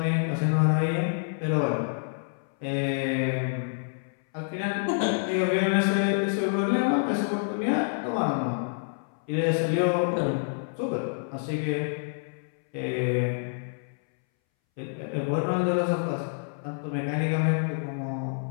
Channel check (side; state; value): right; silent; 60 dB below the other